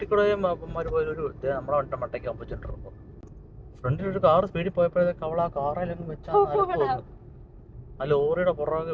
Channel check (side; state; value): both; identical; correlation 1.00